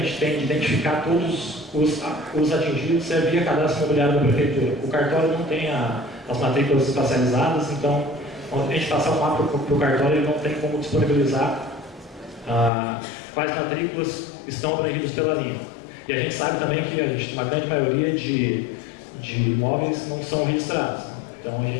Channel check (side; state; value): right; drops out; at 12.7 s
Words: tem de identificar todos os atingidos é via cadastro imobiliário da Prefeitura. O cartório não tem as matrículas espacializadas, então quando a gente passar o mapa para o cartório, ele não tem como disponibilizar quais matrículas estão abrangidas pela linha. E a gente sabe também que uma grande maioria de imóveis não são registrados. Então a